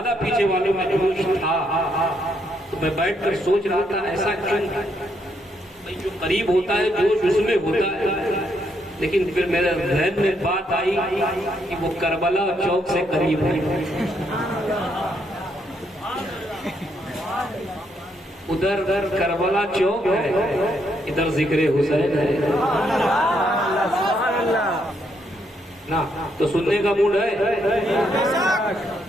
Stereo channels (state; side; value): normal; both; correlation 0.75